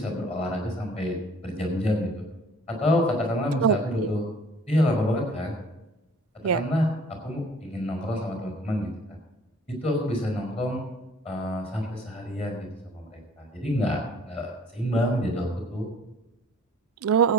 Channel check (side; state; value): both; normal; correlation 0.53